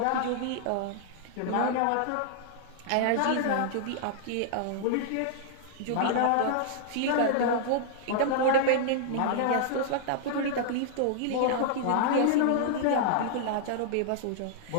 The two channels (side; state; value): both; different; correlation -0.01